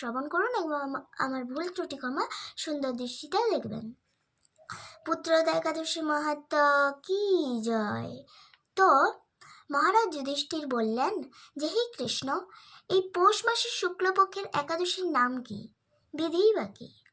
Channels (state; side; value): identical; both; correlation 1.00